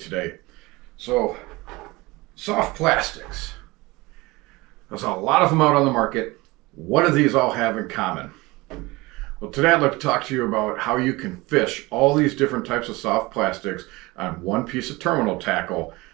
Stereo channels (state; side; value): quieter; left; 22.3 dB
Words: So, soft plastics. There's a lot of them out on the market. What do these all have in common? Well, today I'd like to talk to you about how you can fish all these different types of soft plastics on one piece of terminal tackle,